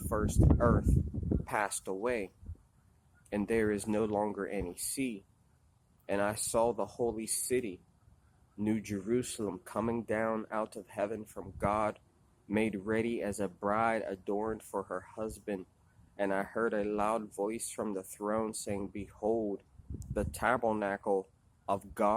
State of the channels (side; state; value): both; identical; correlation 1.00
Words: earth passed away, and there is no longer any sea. And I saw the holy city, New Jerusalem, coming down out of heaven from God, made ready as a bride adorned for her husband. And I heard a loud voice from the throne saying, Behold, the tabernacle of